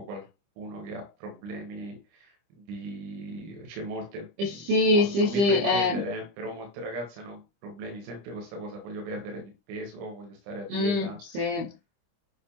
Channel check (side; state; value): left; late; 25 ms